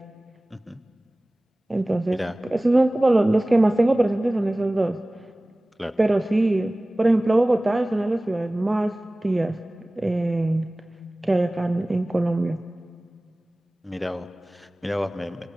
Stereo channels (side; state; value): both; normal; correlation 0.98